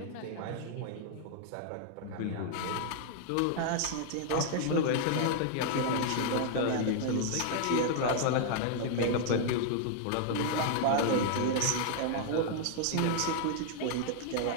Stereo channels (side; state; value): both; different; correlation 0.00